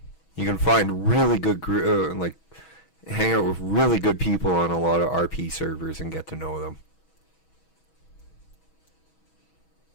You can find really good, like, hang out with really good people on a lot of RP servers and get to know them.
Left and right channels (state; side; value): late; right; 6.2 ms